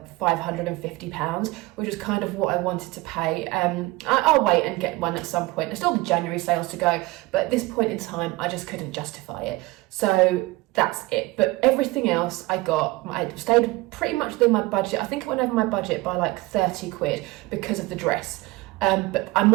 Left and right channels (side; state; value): left; quieter; 20.9 dB